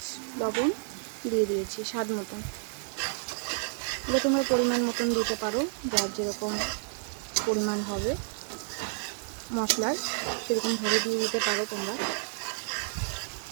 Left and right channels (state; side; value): silent; left; 56 dB below the other